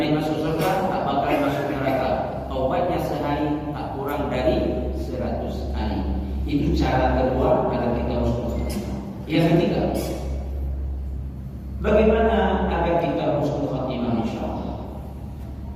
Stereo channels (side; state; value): both; identical; correlation 1.00